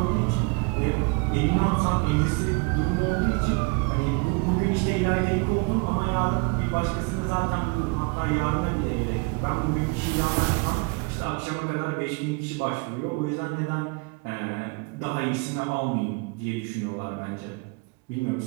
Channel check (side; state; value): left; quieter; 31.4 dB